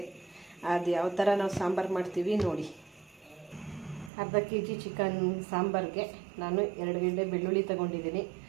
ಅದು ಯಾವ ಥರ ನಾವು ಸಾಂಬಾರು ಮಾಡ್ತೀವಿ ನೋಡಿ. ಅರ್ಧ kg ಚಿಕನ್ ಸಾಂಬಾರಿಗೆ ನಾನು 2 ಗೆಡ್ಡೆ ಬೆಳ್ಳುಳ್ಳಿ ತೊಗೊಂಡಿದ್ದೀನಿ,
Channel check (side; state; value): left; drops out; at 4.1 s